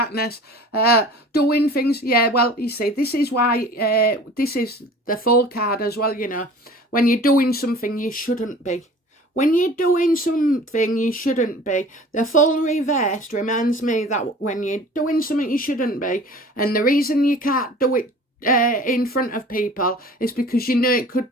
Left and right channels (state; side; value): normal; both; correlation 0.44